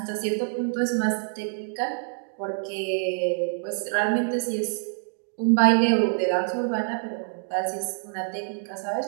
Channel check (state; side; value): silent; left; digital silence